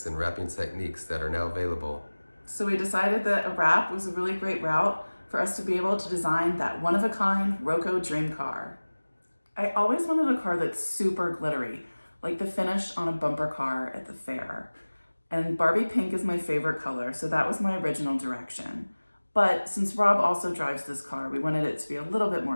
and wrapping techniques that are now available. So we decided that a wrap was a really great route for us to be able to design that one-of-a-kind Roco dream car. I always wanted a car that's super glittery, like the finish on a bumper car at the fair. And Barbie pink is my favorite color, so that was my original direction. But since Rob also drives this car, we wanted it to be a little bit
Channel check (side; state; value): both; inverted; correlation -1.00